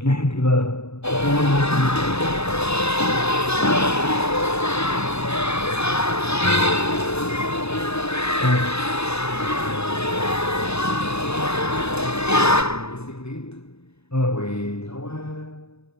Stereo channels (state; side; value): late; right; 0.79 ms